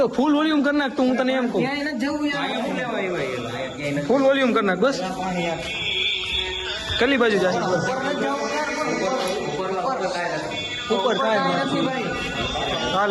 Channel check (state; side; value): identical; both; correlation 1.00